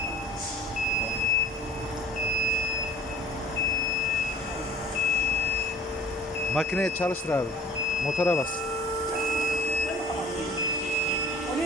Makineye çalıştır abi. Motora bas.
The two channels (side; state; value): both; normal; correlation 0.47